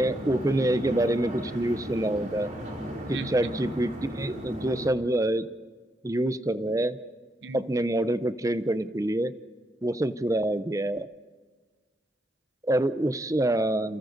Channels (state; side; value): normal; both; correlation 0.78